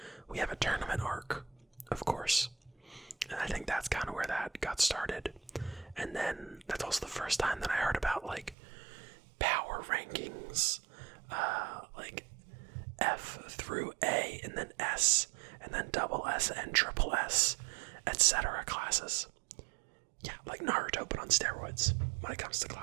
we have a tournament arc, of course. And I think that's kind of where that got started. And then that's also the first time that I heard about, like, power rankings, like F through A, and then S, and then double S and triple S, etc. classes. Yeah, like Naruto, but on steroids when it comes to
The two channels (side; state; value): left; drops out; at 8.6 s